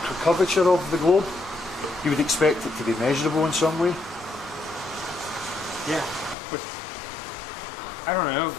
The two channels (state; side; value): drops out; right; at 6.4 s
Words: curvature of the globe? You would expect it to be measurable in some way? Yeah, but I don't know.